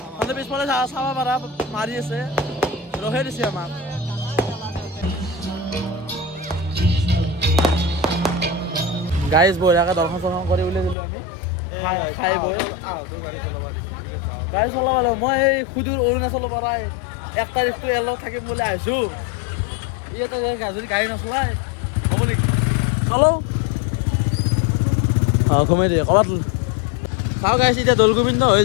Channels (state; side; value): drops out; right; at 11.0 s